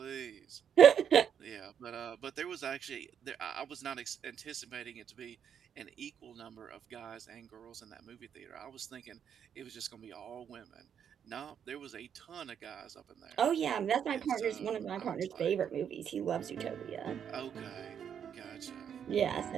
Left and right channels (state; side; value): quieter; left; 8.3 dB